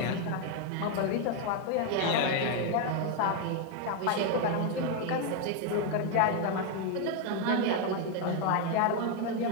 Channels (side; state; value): both; different; correlation 0.01